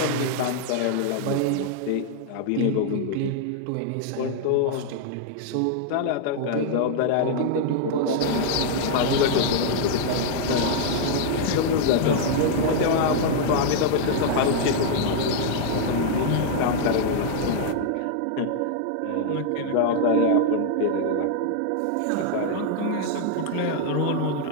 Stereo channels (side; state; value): both; different; correlation 0.00